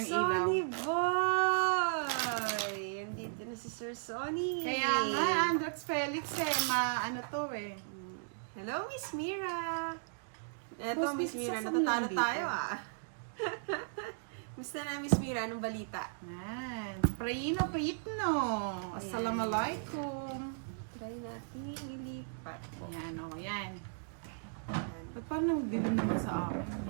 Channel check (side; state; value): left; silent; digital silence